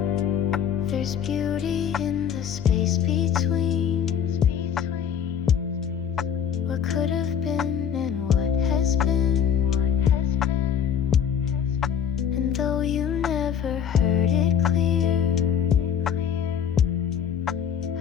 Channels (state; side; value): quieter; right; 8.4 dB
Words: There's beauty in the space between what could have been and what has been. And though you never heard it clear,